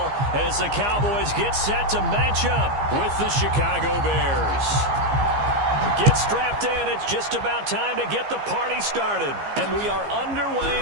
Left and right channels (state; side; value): late; left; 15 ms